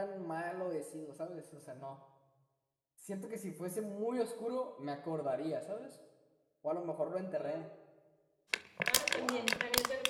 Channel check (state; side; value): identical; both; correlation 1.00